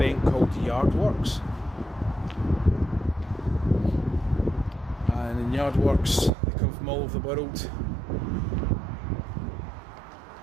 called Yardworks, and in Yardworks they come from all over the world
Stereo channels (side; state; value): left; drops out; at 6.3 s